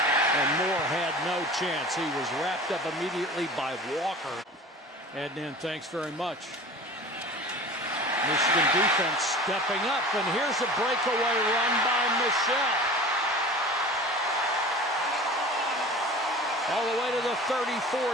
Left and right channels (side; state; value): both; normal; correlation 0.39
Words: and Moore had no chance. He was wrapped up immediately by Walker. Heading in, thanks very much. Michigan defense stepping up, and here's a breakaway run by Michelle. All the way to the